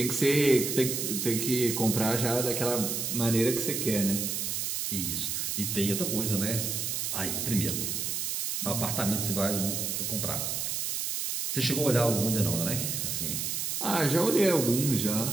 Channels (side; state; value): right; noise; hiss, 1 dB below the sound